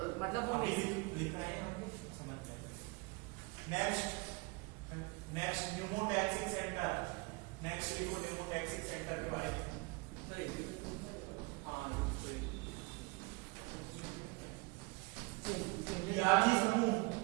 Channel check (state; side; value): quieter; left; 27.4 dB